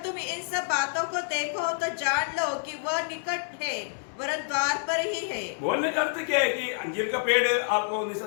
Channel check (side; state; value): right; silent; digital silence